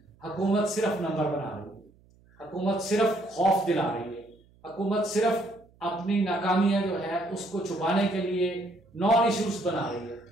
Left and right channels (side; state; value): right; noise; hum, 30 dB below the sound